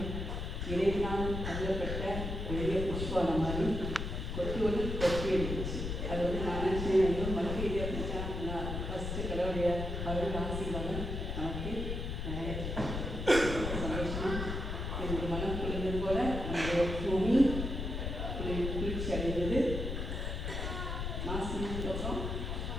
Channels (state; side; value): noise; left; rumble, 3 dB below the sound